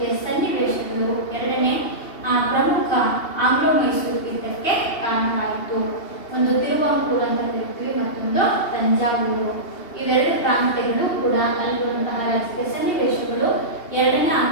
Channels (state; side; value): late; right; 2.8 ms